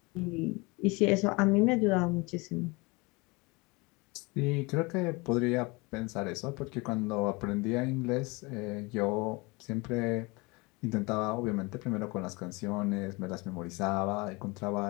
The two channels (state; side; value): quieter; right; 26.2 dB